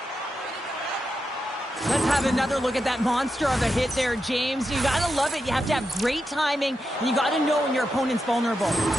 Let's have another look at that monster of a hit there, James. You gotta love it. You have to have great timing, and you gotta know when your opponent's vulnerable.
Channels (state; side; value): normal; both; correlation 0.87